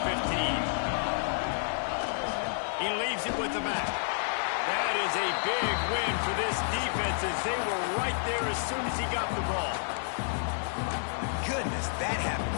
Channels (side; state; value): right; silent; digital silence